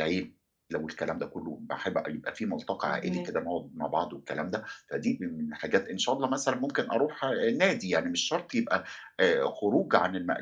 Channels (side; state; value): both; identical; correlation 1.00